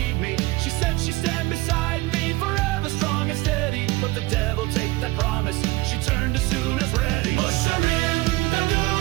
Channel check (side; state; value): left; quieter; 20.6 dB